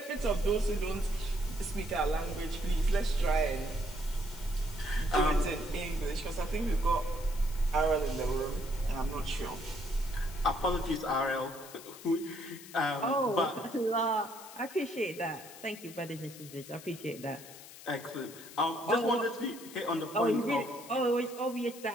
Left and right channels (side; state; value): left; noise; hiss, 16 dB below the sound